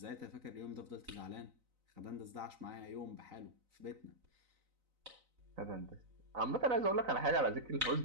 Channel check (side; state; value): left; late; 3.9 ms